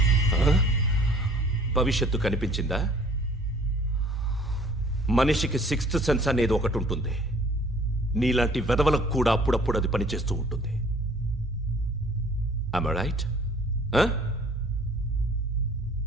భవిష్యత్తు కనిపించిందా? మనిషికి 6th సెన్స్ అనేది ఒకటి ఉంటుంది. నీలాంటి వెధవలకు కూడా అప్పుడప్పుడు అది పనిచేస్తూ ఉంటుంది. Am I right?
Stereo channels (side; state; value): both; normal; correlation 0.54